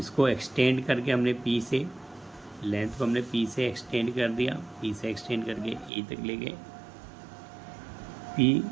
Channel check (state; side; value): drops out; left; at 5.9 s